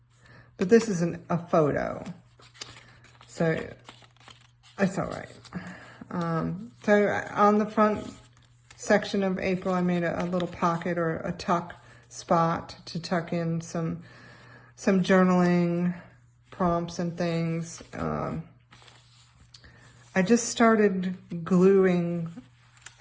but this is a photo, so it's all right. So on the front section of April, I made a little pocket or a tuck spot to tuck in some journaling prompts and things. I just started gluing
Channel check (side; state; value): both; identical; correlation 1.00